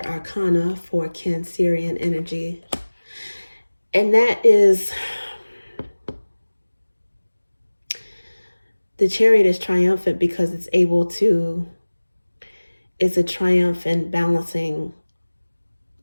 arcana for Cancerian energy. And that is, the Chariot is triumphant because it's able to, it's a triumph in balancing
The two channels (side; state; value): both; inverted; correlation -1.00